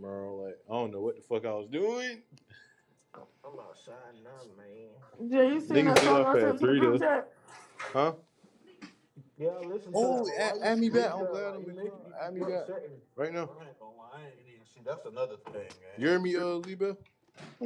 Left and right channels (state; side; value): identical; both; correlation 1.00